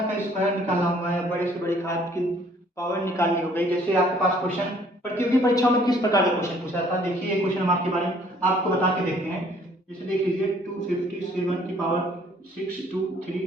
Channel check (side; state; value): both; normal; correlation 0.59